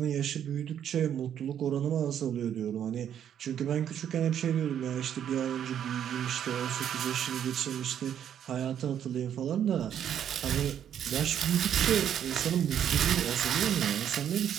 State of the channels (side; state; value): left; quieter; 9.5 dB